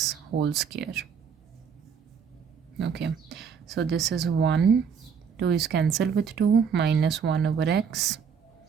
whole square. Okay, so this is 1, 2 is cancelled with 2, minus 1 over x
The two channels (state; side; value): quieter; left; 6.7 dB